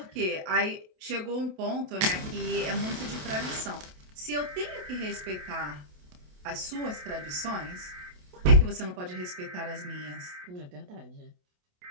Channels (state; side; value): late; left; 28 ms